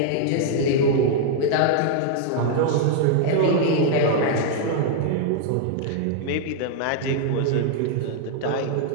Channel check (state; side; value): different; both; correlation -0.01